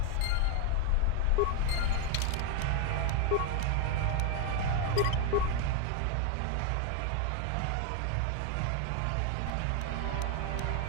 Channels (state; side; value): different; both; correlation 0.01